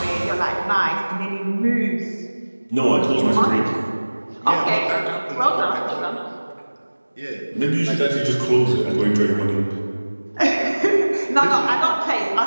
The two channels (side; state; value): both; inverted; correlation -1.00